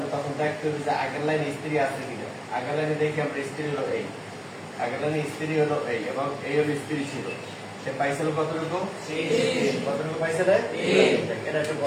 তখন দেখতে হবে যে আগের লাইনে স্ত্রী আছে কিনা আগের লাইনে দেখি আমরা স্ত্রী হলো এই আগের লাইনে স্ত্রী হলো এই এবং এই হলো স্ত্রী ছিল সে পাইছিল কতটুকু পাইছে না এটা একটু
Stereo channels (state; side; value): identical; both; correlation 1.00